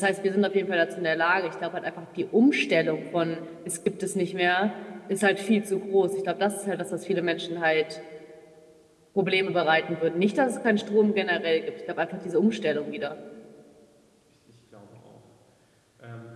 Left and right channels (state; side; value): identical; both; correlation 1.00